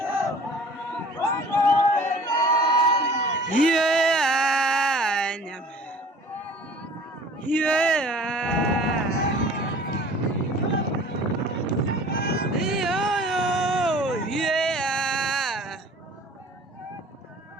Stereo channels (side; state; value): both; normal; correlation 0.48